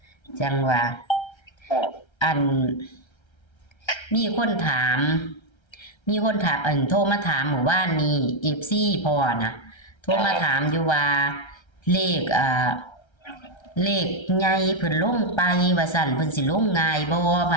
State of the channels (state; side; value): late; right; 1.3 ms